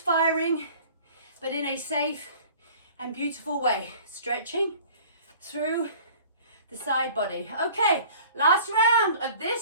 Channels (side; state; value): both; inverted; correlation -0.48